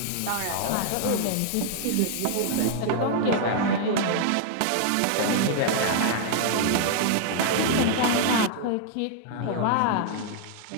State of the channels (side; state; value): both; different; correlation -0.01